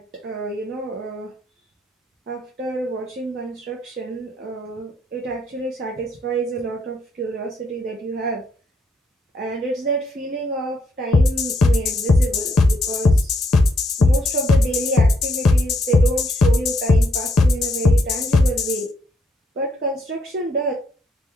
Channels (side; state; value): both; normal; correlation 0.75